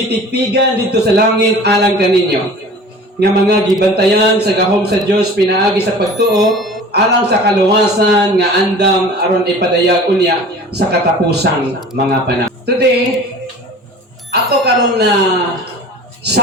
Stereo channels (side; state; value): both; normal; correlation 0.42